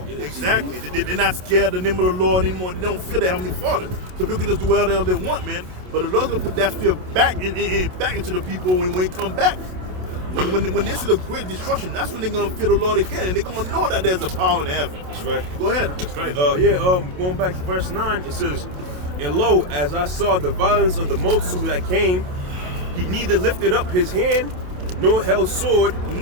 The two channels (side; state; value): left; late; 27 ms